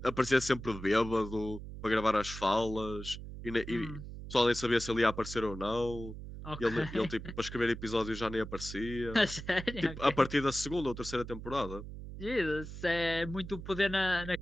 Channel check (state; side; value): noise; right; hum, 11 dB below the sound